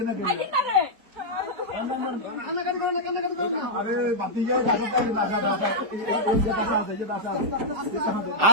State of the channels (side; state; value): left; late; 4.6 ms